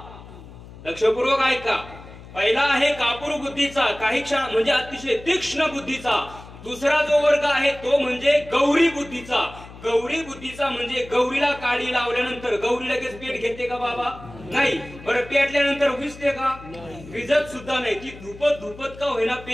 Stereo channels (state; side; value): noise; left; hum, 17 dB below the sound